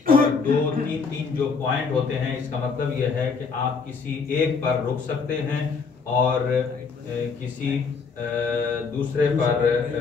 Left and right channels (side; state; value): right; quieter; 5.1 dB